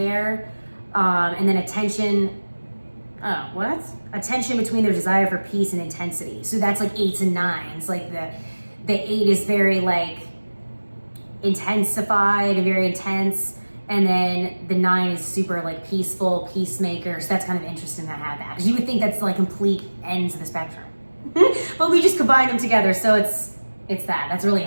And then attention between their desire for peace and intensity. So that's like 8s and 9s. Like the 8 is very like intensified and very intense. And then the 9 is super like peaceful, peacemaker. So that's kind of interesting to have that. Because you would think that's like complete ends of the spectrum. But we just combine them together. So it's that. That's really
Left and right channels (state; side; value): inverted; both; correlation -1.00